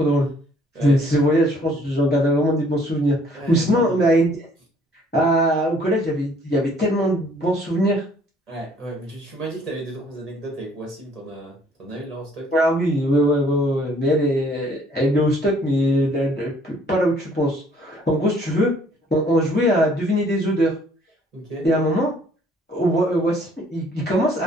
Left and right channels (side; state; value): both; normal; correlation 0.60